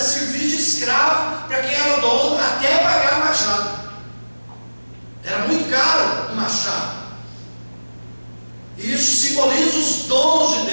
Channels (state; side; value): inverted; both; correlation -1.00